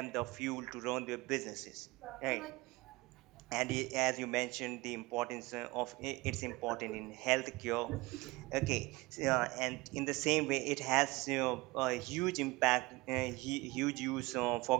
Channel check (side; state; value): left; quieter; 22.3 dB